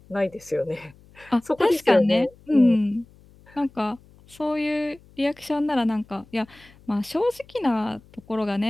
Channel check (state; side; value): noise; left; hum, 26 dB below the sound